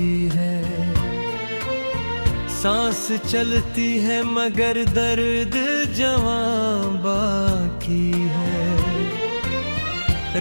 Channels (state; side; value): inverted; both; correlation -1.00